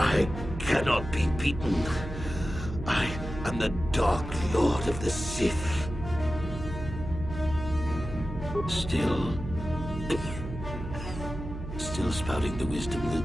cannot be beaten. I am the Dark Lord of the Sith. Still spouting the wisdom of the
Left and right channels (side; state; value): right; noise; hum, 8 dB below the sound